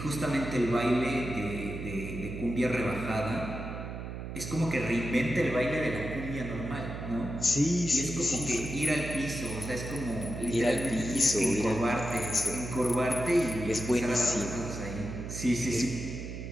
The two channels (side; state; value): right; noise; hum, 7 dB below the sound